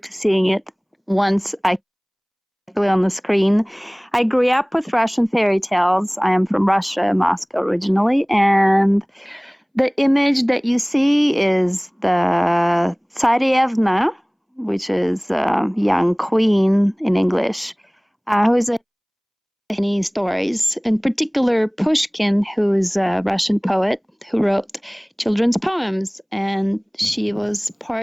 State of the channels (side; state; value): both; identical; correlation 1.00